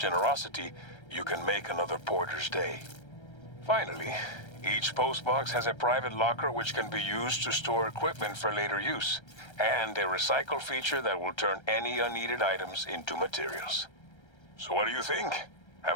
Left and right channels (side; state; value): right; late; 1.3 ms